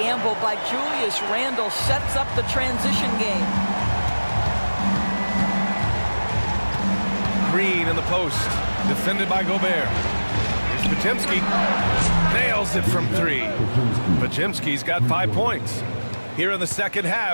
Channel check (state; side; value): inverted; both; correlation -1.00